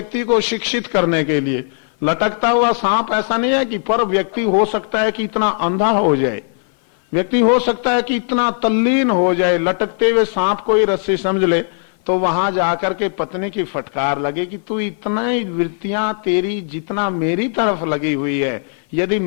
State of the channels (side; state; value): right; silent; 57 dB below the other